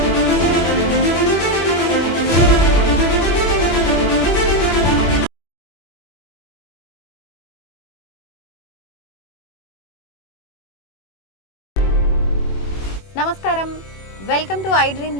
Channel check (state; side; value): late; right; 21 ms